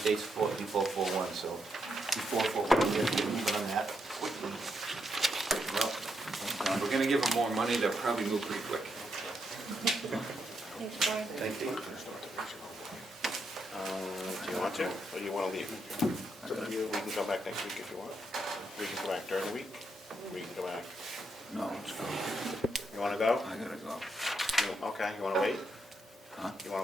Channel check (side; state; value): both; normal; correlation 0.80